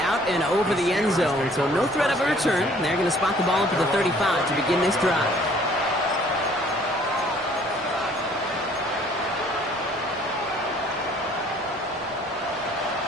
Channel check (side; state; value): both; normal; correlation 0.57